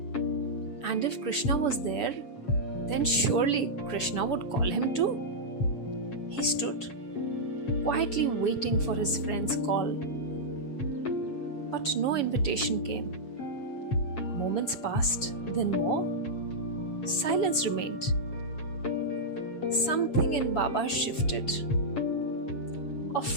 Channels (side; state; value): right; late; 6.9 ms